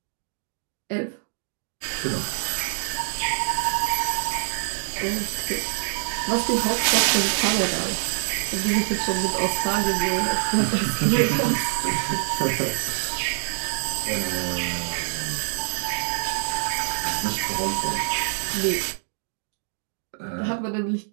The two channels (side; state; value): left; silent; digital silence